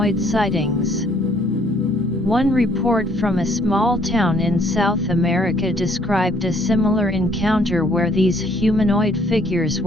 sightings. One report from a small town in South America described a similar encounter where these humanoid figures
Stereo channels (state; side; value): normal; both; correlation 0.63